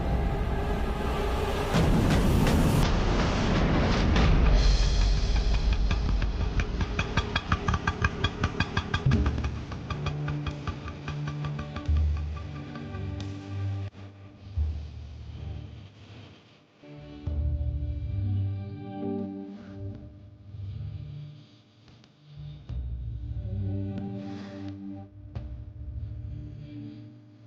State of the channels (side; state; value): both; identical; correlation 1.00